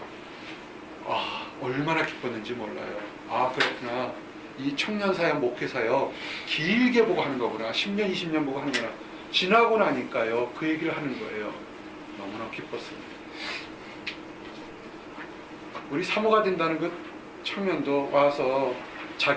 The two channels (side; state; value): both; identical; correlation 1.00